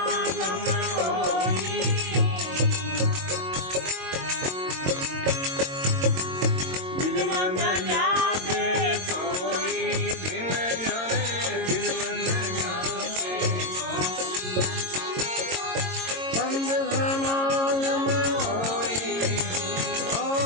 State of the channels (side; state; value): left; late; 22 ms